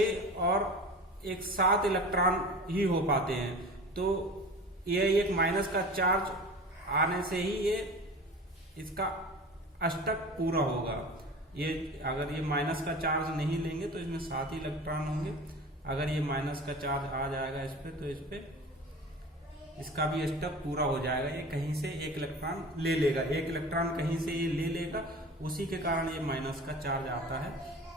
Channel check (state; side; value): normal; both; correlation 0.37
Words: और एक 7 इलेक्ट्रॉन ही हो पाते हैं। तो ये एक माइनस का चार्ज आने से ही ये इसका अष्टक पूरा होगा। ये अगर ये माइनस का चार्ज नहीं लेंगे तो इसमें 7 ही इलेक्ट्रॉन होंगे। अगर ये माइनस का चार्ज आ जाएगा इस पे, तो इस पे इसका भी अष्टक पूरा हो जाएगा। ये कहीं से 1 इलेक्ट्रॉन ले लेगा, 1 इलेक्ट्रॉन कहीं से ये ले लेगा, उसी के कारण ये माइनस का चार्ज आता है।